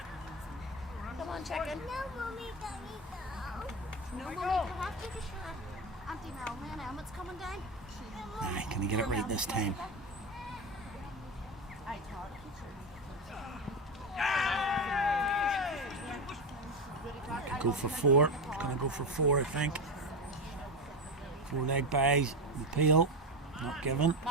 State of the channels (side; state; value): both; normal; correlation 0.17